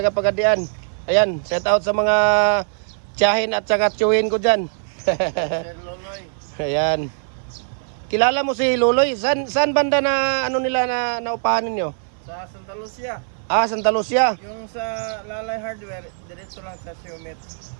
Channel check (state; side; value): silent; left; 58 dB below the other